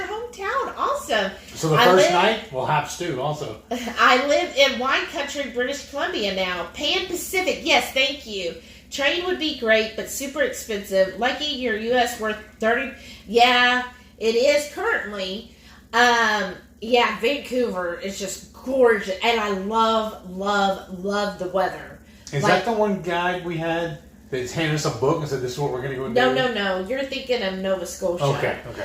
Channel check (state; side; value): identical; both; correlation 1.00